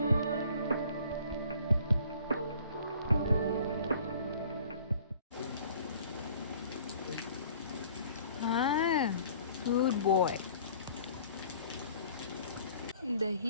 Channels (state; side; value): inverted; both; correlation -0.53